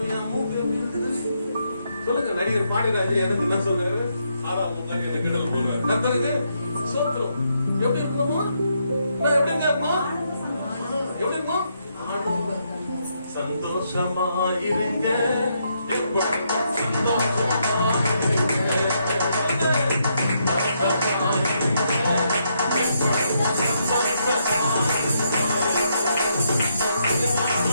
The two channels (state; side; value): inverted; both; correlation -0.77